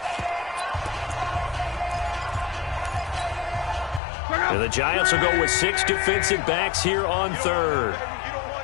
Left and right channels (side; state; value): right; drops out; at 4.0 s